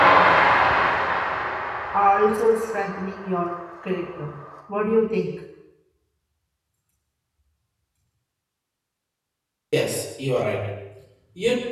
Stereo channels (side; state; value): both; identical; correlation 1.00